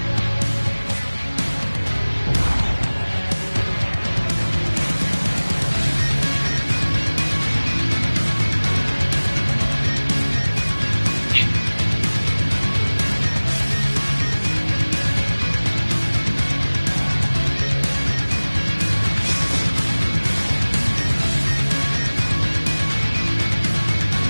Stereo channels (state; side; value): inverted; both; correlation -1.00